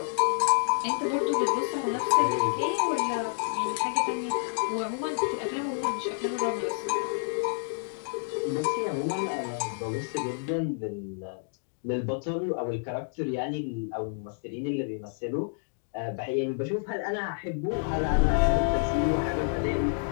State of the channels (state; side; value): silent; right; digital silence